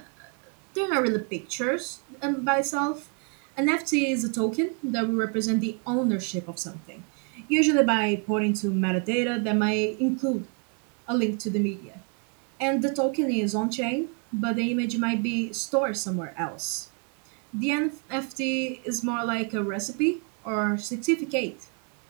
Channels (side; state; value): left; quieter; 37.6 dB